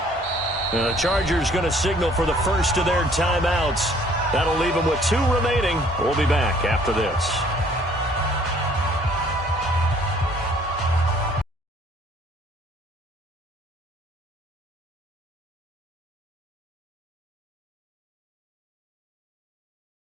31. The Chargers going to signal for the first of their timeouts. That'll leave them with 2 remaining. We'll be back after this.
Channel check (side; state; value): both; normal; correlation 0.58